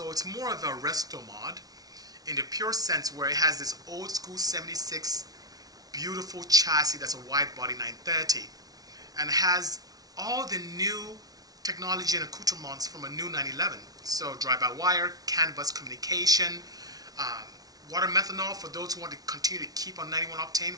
it's more of a resto mod in the pure sense where it has this old school 76 beautiful chassis that's a wide body 930 and has all the new technology and accoutrements from a new 911. So drive-by-wire, CAN bus communication, water methanol for those who want to continue to keep on 91 octane.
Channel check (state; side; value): late; left; 0.18 ms